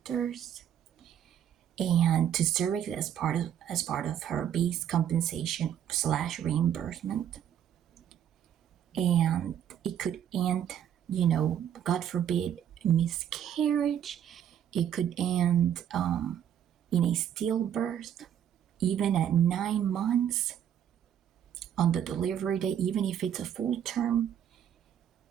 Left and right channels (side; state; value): left; quieter; 9.7 dB